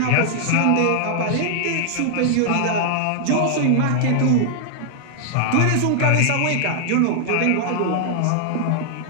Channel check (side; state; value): both; different; correlation -0.01